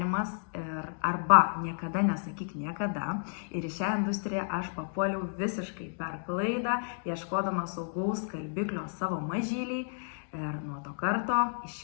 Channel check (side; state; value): right; silent; digital silence